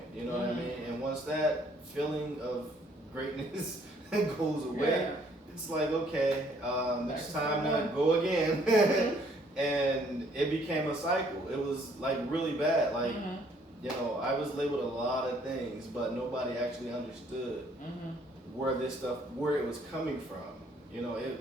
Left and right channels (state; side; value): normal; both; correlation 0.64